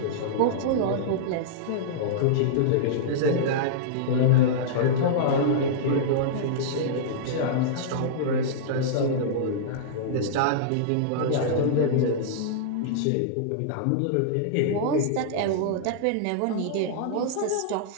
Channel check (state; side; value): different; both; correlation -0.03